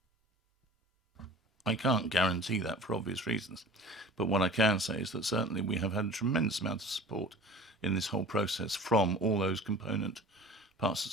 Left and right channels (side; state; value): both; normal; correlation 0.42